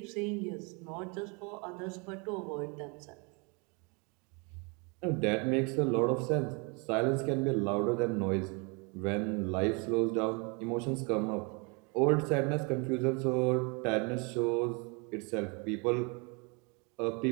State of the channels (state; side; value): quieter; left; 32.0 dB